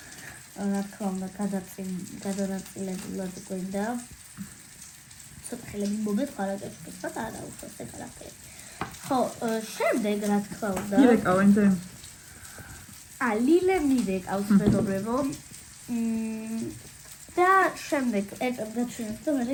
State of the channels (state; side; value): identical; both; correlation 1.00